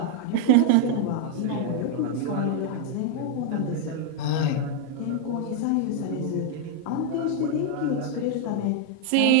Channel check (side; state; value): both; different; correlation 0.00